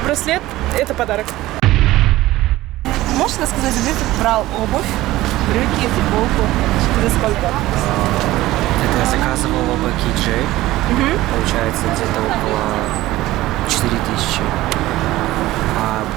Браслет это подарок. Можешь рассказать, где ты брал обувь, брюки, футболку? За сколько? Это я заказывал оба KJ. Получается где-то около 4000.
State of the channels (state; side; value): quieter; left; 16.8 dB